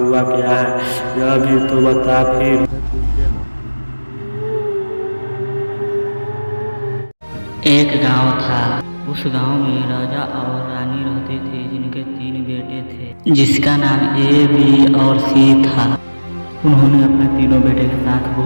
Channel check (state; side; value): inverted; both; correlation -1.00